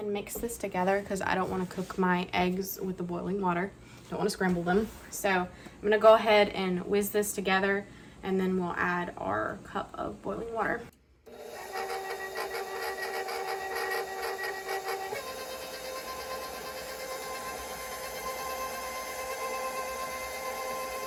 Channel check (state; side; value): identical; both; correlation 1.00